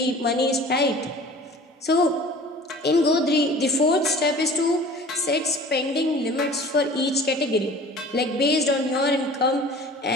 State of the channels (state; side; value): normal; both; correlation 0.44